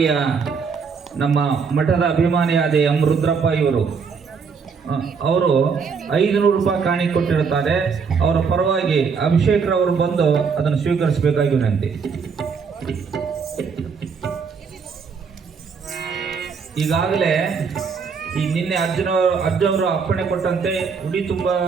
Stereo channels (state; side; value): quieter; left; 5.7 dB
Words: ನಮ್ಮ ಮಠದ ಅಭಿಮಾನಿಯಾದ ಎಂ ರುದ್ರಪ್ಪ ಇವರು ಅವರು 500 ರೂಪಾಯಿ ಕಾಣಿ ಕೊಟ್ಟಿರುತ್ತಾರೆ. ಅವರ ಪರವಾಗಿ ಅಭಿಷೇಕ್ ರವರು ಬಂದು ಅದನ್ನು ಸ್ವೀಕರಿಸಬೇಕಾಗಿ ವಿನಂತಿ. ಈಗಾಗಲೇ ಈ ನಿನ್ನೆ ಅರ್ಜುನವರು ಅಪ್ಪಣೆ ಕೊಟ್ಟಂತೆ ಉಡಿ ತುಂಬ